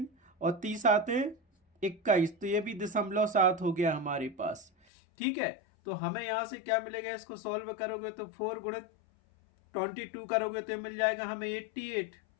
और 30 आते 21, तो ये भी 0.7 हो गया हमारे पास। ठीक है, तो हमें यहां से क्या मिलेगा, इसको सॉल्व करोगे तो 4 गुणित 22 करोगे तो मिल जाएगा हमें 88,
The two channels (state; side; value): drops out; right; at 4.7 s